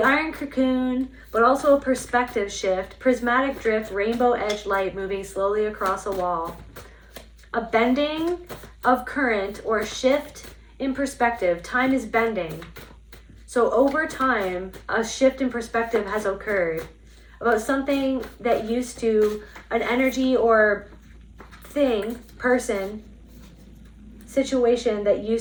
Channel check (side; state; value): both; identical; correlation 1.00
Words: iron cocoon, but also a perspective shift, prismatic drift, rainbow edge light moving slowly across a wall. A bending of current or a shift in perspective. Time is bending. So over time, a shift in perspective has occurred about something that used to, an energy or thing, person, situation that